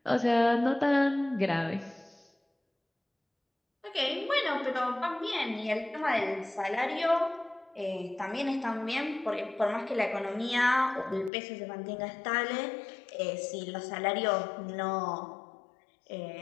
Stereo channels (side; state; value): right; drops out; at 11.3 s